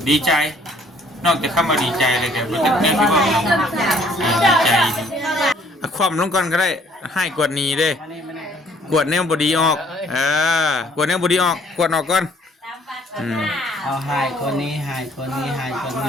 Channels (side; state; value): both; normal; correlation 0.60